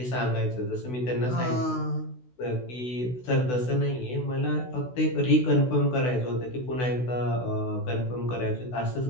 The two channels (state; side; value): late; right; 16 ms